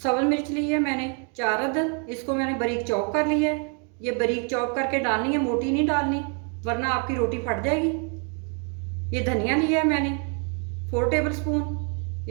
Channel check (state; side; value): quieter; left; 39.1 dB